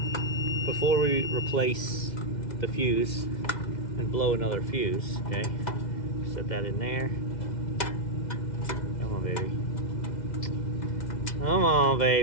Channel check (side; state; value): right; late; 2.1 ms